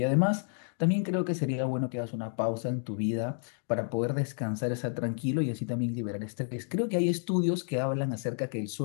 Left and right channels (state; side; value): silent; right; digital silence